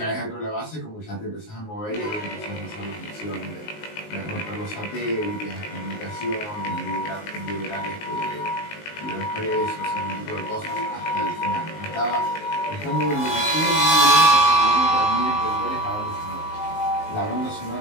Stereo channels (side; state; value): right; late; 19 ms